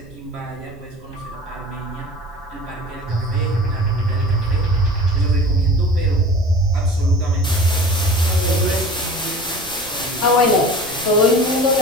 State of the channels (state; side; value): noise; right; rumble, 22 dB below the sound